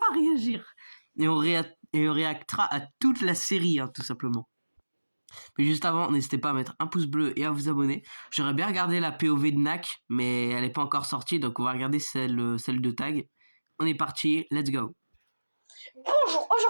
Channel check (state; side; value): inverted; both; correlation -1.00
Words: réagir? Et on réactera à toute la série, tout simplement. Mais juste avant, n'hésitez pas à mettre un pouce bleu et à vous abonner. J'aurais bien regardé la POV de Nak, mais elle n'est pas encore sortie, donc on va regarder celle de Tag. On est parti, let's go. Bonjour,